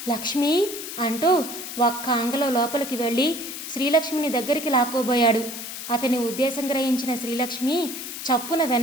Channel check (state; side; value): noise; left; hiss, 8 dB below the sound